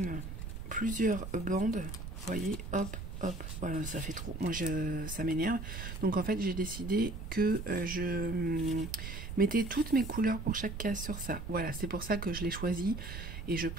plusieurs bandes, vous voyez, hop, hop, voilà, ça fait trop, moi ça m'énerve. Donc en fait j'ai décidé que je mettais toutes mes couleurs pour chaque case sur ça. Voilà, c'est pour ça que je l'ai choisi, et je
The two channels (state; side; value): noise; right; rumble, 7 dB below the sound